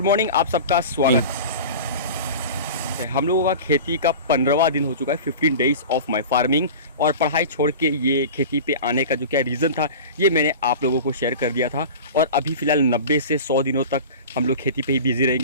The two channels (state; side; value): inverted; both; correlation -0.34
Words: मॉर्निंग, आप सबका स्वागत है। हम लोगों का खेती का 15वां दिन हो चुका है, 15 डेज ऑफ माय फार्मिंग। और पढ़ाई छोड़ के ये खेती पे आने का जो क्या रीज़न था ये मैंने आप लोगों को शेयर कर दिया था। और अभी फ़िलहाल 90 से 100 दिनों तक हम लोग खेती पे ही बिजी